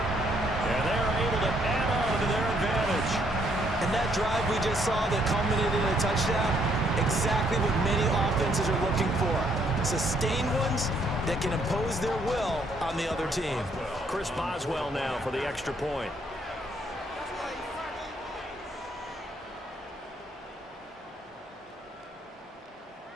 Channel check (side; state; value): both; normal; correlation 0.70